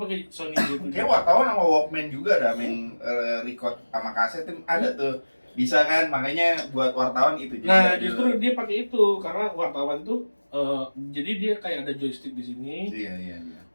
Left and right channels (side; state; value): both; inverted; correlation -1.00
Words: Sony J7. Kayak wartawan sama Walkman juga ada yang record sama kaset tuh ada tuh. Bisa kan, makanya buat wartawan itu juga. Nah, justru dia pakai itu karena wartawan tuh jadi dia kayak ada joystick di sini Iya.